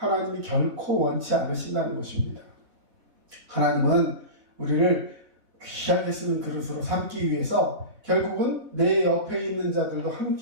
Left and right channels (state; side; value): late; left; 3.6 ms